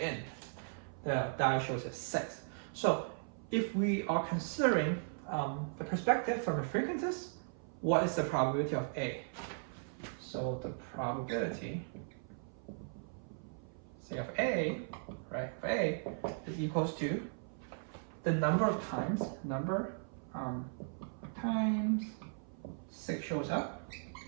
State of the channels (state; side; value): silent; left; 53 dB below the other